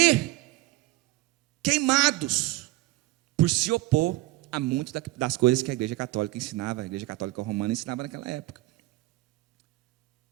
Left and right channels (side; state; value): left; quieter; 18.5 dB